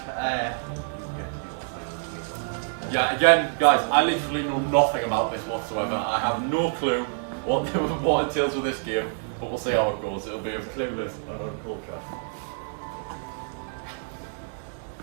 get to do what's like the table. Yeah, again, guys, I literally know nothing about this whatsoever. I have no clue what entails with this game, but we'll see how it goes. It'll be as clueless and uncultured.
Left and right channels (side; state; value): left; silent; digital silence